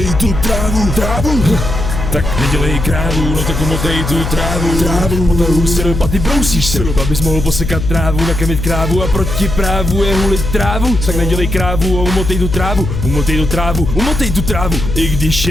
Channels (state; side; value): noise; left; hum, 4 dB below the sound